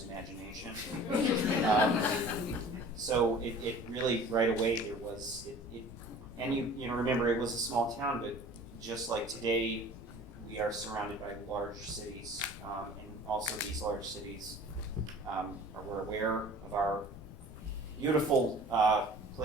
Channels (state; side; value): noise; left; rumble, 15 dB below the sound